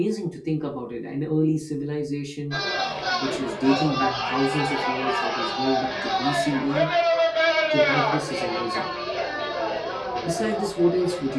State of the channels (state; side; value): identical; both; correlation 1.00